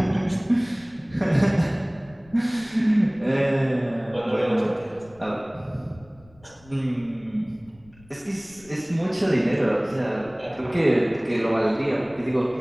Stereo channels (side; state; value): left; noise; rumble, 26 dB below the sound